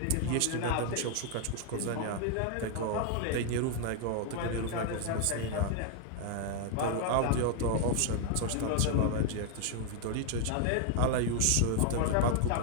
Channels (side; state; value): both; different; correlation 0.00